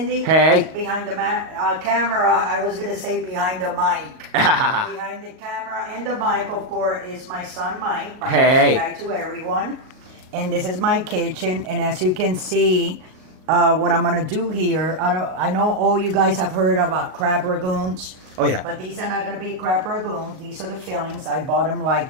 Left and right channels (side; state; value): left; late; 38 ms